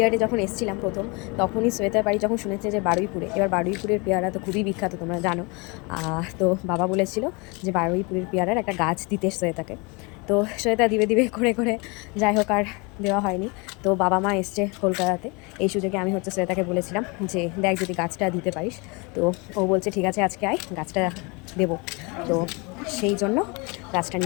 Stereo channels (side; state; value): right; quieter; 29.1 dB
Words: যখন এসেছিলাম প্রথম, তখনই শ্বেতার বাড়ি যখন শুনেছে যে বারুইপুরে, এবার বারুইপুরের পেয়ারা তো খুবই বিখ্যাত, তোমরা জানো। তো বাবা বলেছিল যে বারুইপুরের পেয়ারার একটা গাছ দিতে শ্বেতাকে। তো শ্বেতা দিবে দিবে করে করে যাই হোক আর দেওয়া হয়নি। তো বাবা মা এসছে কলকাতাতে, এই সুযোগে আমি হচ্ছে শ্বেতাকে বলেছিলাম যে দেখ যদি গাছটা দিতে পারিস। তো ও বলছে ঠিক আছে আজকে আয়, গাছটা দেবো। তো সেই জন্য গাছটা